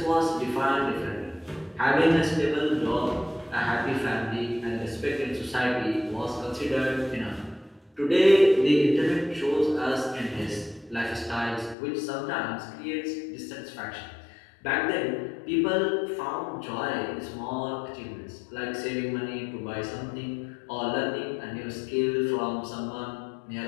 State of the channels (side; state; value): right; drops out; at 11.8 s